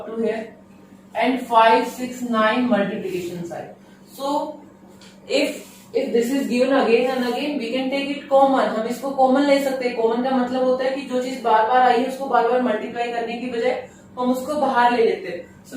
to here, and 5, 6, 9 multiplication sign. So if this is given again and again, we can take it common. हम इसको common ले सकते हैं. Common का मतलब होता है कि जो चीज बार बार आई है उसको बार बार मल्टीप्लाई करने की बजाय हम उसको बाहर ले लेते हैं. सो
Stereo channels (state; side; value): identical; both; correlation 1.00